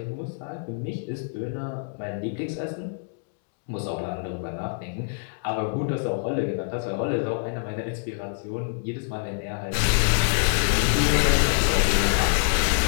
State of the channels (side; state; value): right; silent; digital silence